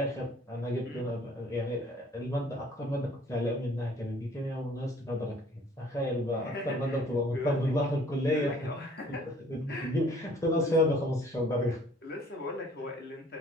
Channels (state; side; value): normal; both; correlation 0.56